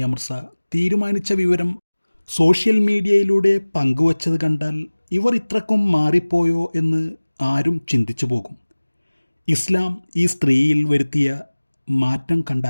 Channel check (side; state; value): both; inverted; correlation -1.00